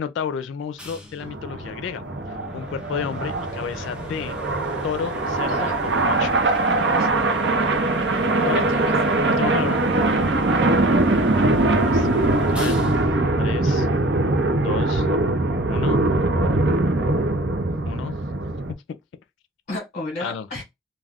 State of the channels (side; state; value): both; normal; correlation 0.36